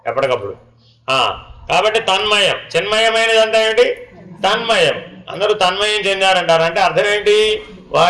ఎప్పటికప్పుడు. కాబట్టి తన్మయం. చిన్మయమైనది అంతా ఏంటి? తన్మయం. అందరూ తన్మయం చెందారంటారు. అంటే అర్థం ఏంటి?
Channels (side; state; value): both; identical; correlation 1.00